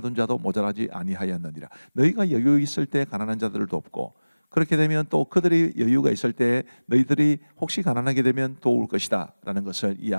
자도 모자라지 아니하였느니라. 너희가 여유 있을 때 가난한 자들을 돕고, 그렇게 되면 또 그들이 여유가 있을 때 너희들이 혹시 가난하게 되면 도울 것이다 라는 것을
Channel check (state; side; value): inverted; both; correlation -1.00